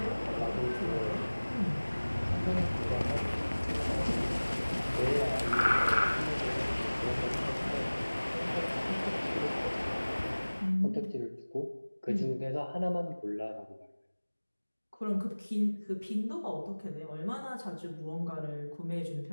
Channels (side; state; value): both; inverted; correlation -1.00